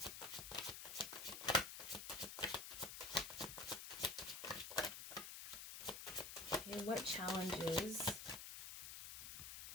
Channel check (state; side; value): noise; left; hiss, 8 dB below the sound